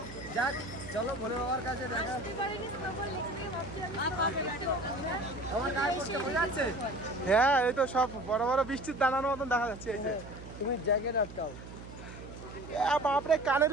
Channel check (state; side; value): noise; right; hum, 14 dB below the sound